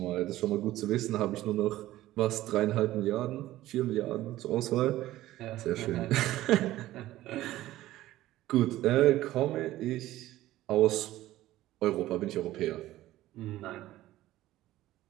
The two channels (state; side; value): quieter; left; 15.4 dB